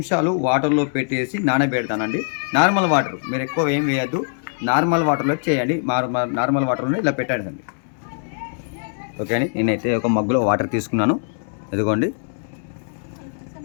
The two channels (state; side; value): silent; right; digital silence